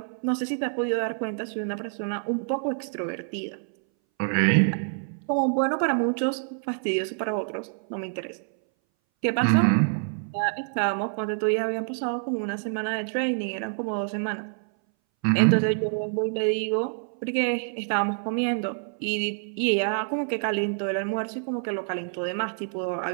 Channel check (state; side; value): silent; left; 59 dB below the other